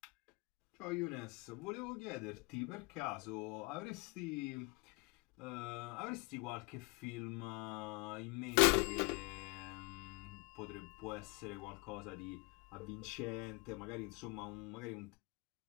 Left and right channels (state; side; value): quieter; right; 27.8 dB